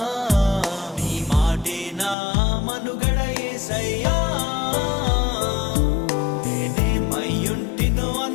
నీ మాటే నా మనుగడ యేసయ్యా.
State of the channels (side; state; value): right; drops out; at 2.1 s